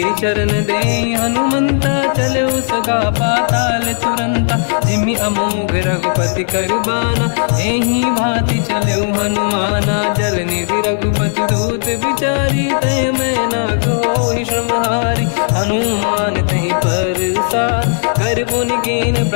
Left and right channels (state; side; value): silent; right; 59 dB below the other